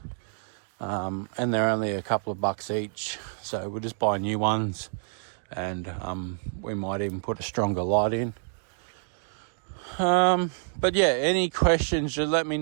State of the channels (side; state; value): left; silent; digital silence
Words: And they're only a couple of bucks each. So we'll just buy new ones, and we might even put a stronger light in. But yeah, any questions, just let me